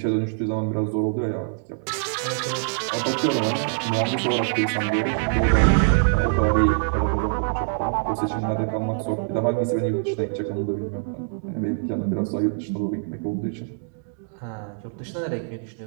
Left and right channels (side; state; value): left; silent; digital silence